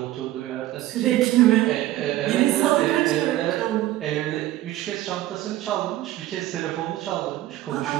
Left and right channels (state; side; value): quieter; left; 15.1 dB